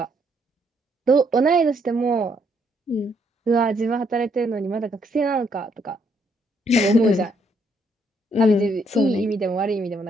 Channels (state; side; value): normal; both; correlation 0.71